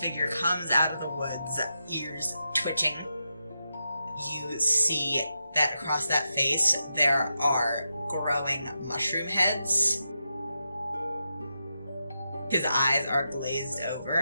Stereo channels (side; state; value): both; inverted; correlation -0.87